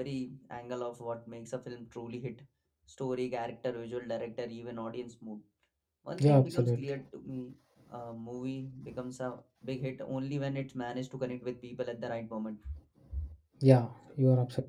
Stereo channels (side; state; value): both; identical; correlation 1.00